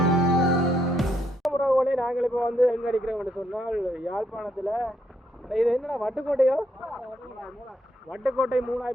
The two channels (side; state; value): both; normal; correlation 0.75